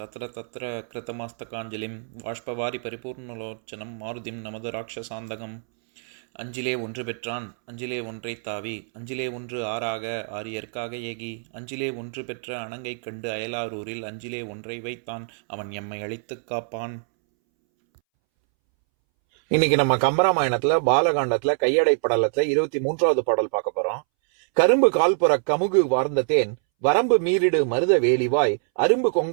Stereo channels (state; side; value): silent; left; 62 dB below the other